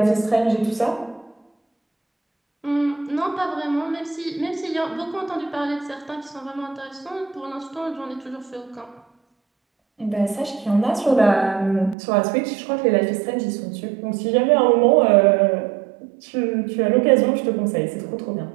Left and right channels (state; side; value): drops out; left; at 12.0 s